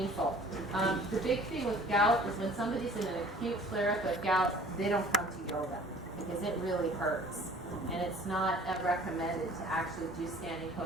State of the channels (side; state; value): both; normal; correlation 0.50